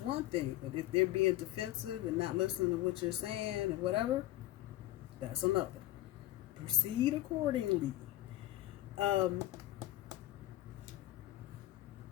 thing. But if they're being defensive and not listening to what you're saying and whatever, that's another. Proceed accordingly.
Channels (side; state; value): right; quieter; 15.3 dB